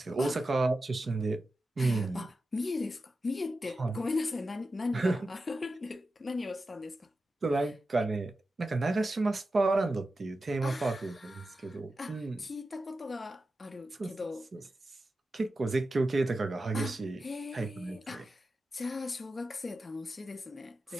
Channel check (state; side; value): normal; both; correlation 0.91